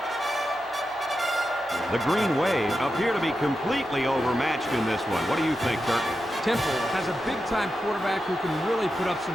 The Green Wave appear to be completely overmatched in this one. What do you think, Kirk? Temple has a big-time quarterback who can really put up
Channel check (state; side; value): normal; both; correlation 0.89